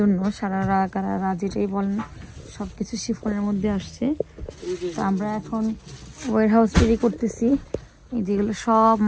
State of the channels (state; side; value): identical; both; correlation 1.00